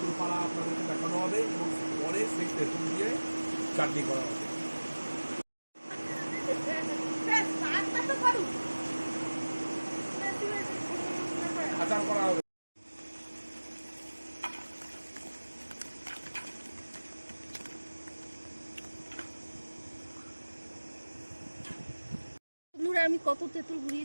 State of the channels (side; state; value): both; inverted; correlation -1.00